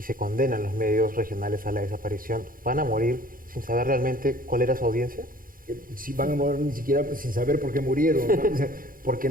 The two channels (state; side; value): late; left; 0.41 ms